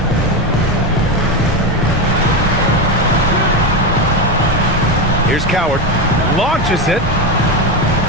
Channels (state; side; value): normal; both; correlation 0.14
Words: Here's Coward. Launches it.